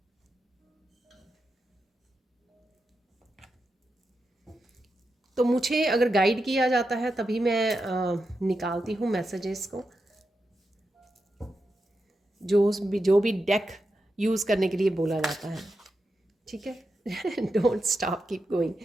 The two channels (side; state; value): both; normal; correlation 0.88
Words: तो मुझे अगर गाइड किया जाता है तभी मैं निकालती हूँ मैसेजेस को, जो भी डेक यूज़ करने के लिए बोला जाता है। ठीक है, डोंट स्टॉप कीप गोइंग।